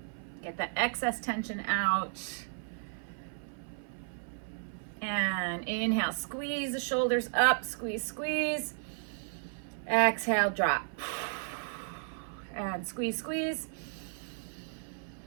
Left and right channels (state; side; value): silent; left; 55 dB below the other